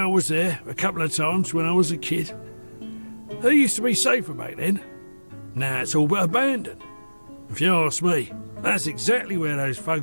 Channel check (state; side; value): inverted; both; correlation -1.00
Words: was there a couple of times when I was a kid. It used to be safer back then. Now it's all but abandoned. If you ask me, that's exactly where those